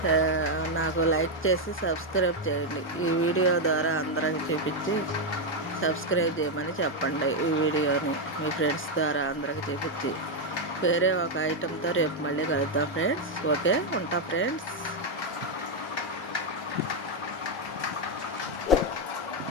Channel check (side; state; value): both; normal; correlation 0.02